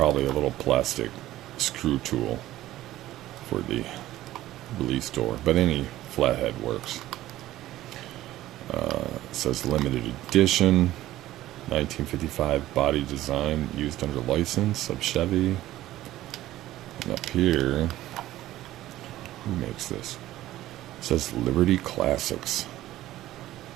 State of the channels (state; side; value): quieter; left; 14.9 dB